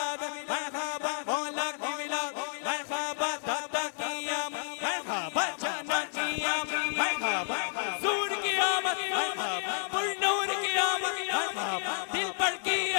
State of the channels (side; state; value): right; silent; digital silence